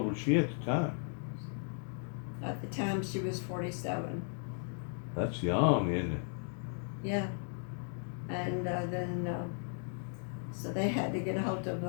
was she at the time? At the time she was 47. That's young, isn't it? Yeah. And then, so they had to get a hold of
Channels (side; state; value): right; silent; 54 dB below the other